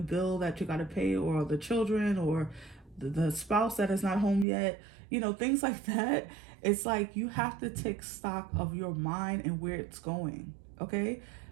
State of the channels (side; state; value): left; drops out; at 4.5 s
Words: that you got to pay, or the children, or the spouse that is not home yet, things like that. It's like you have to take stock of your mind and where it's going, okay?